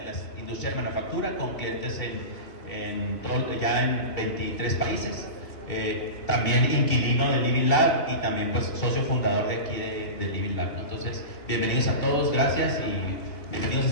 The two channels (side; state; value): right; late; 2.7 ms